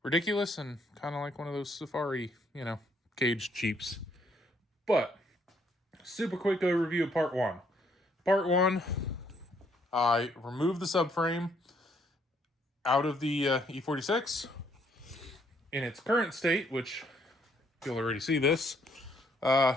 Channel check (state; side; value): normal; both; correlation 0.69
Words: ridiculous and kind of like one of those safari, caged Jeeps. But, super quick overview of part 1. Part 1... I removed the subframe out of the E46 in its current state, which you'll already see this.